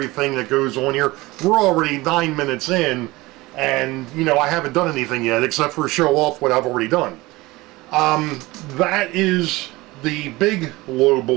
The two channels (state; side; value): quieter; left; 20.8 dB